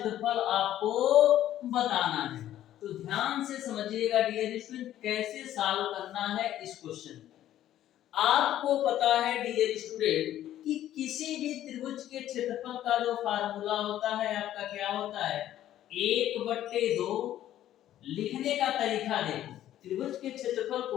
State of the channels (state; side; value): quieter; right; 12.4 dB